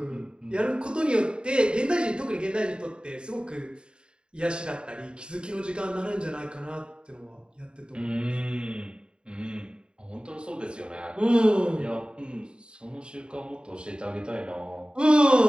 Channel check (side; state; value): left; late; 0.051 ms